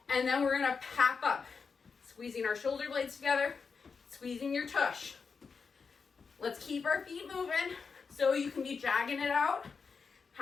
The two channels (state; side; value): quieter; right; 5.3 dB